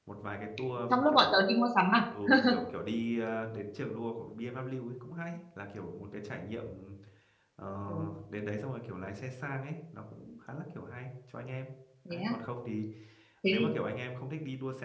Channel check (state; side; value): identical; both; correlation 1.00